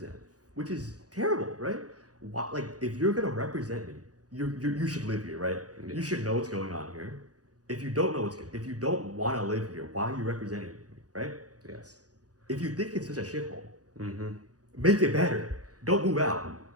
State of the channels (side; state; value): left; late; 0.67 ms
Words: which is terrible, right? If you're gonna represent me, you should live here, right? Yeah. You should know what's going on here. If you don't want to live here, why are you representing me, right? Yes. If you think it's such a shithole, Mm-hmm. make it better. Don't move out.